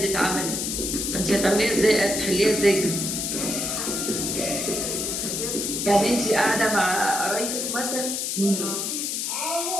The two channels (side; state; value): left; noise; hiss, 1 dB below the sound